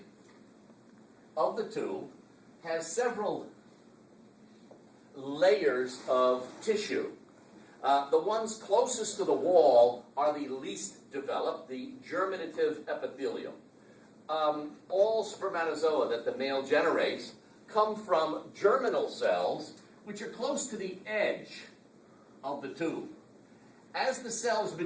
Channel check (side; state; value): both; identical; correlation 1.00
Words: of the tube has several layers of tissue. The ones closest to the wall are the least developed, the germinative epithelium. All spermatozoa that the male generates come from germinal cells, which are close to the edge of the tube. As the cells